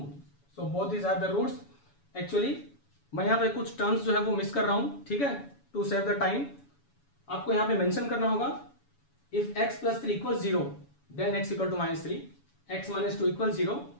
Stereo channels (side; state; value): right; late; 7.1 ms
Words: So both these are the roots. Actually मैं यहाँ पे कुछ terms जो है वो miss कर रहा हूँ, ठीक है, टू सेव द टाइम. आपको यहाँ पे मेंशन करना होगा if x plus 3 equals 0, then x equal to minus 3. X minus 2 equals 0,